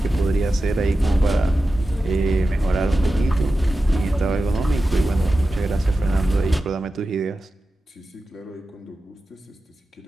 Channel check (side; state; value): both; normal; correlation 0.93